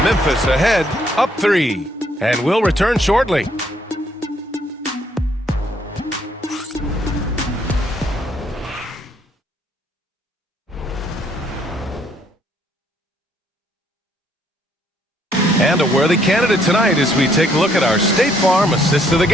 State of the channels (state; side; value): normal; both; correlation 0.68